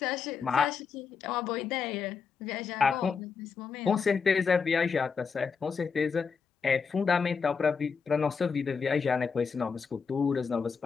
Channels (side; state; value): right; quieter; 5.7 dB